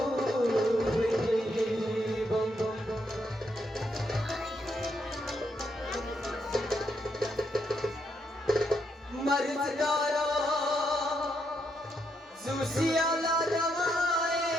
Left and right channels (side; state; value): both; normal; correlation 0.78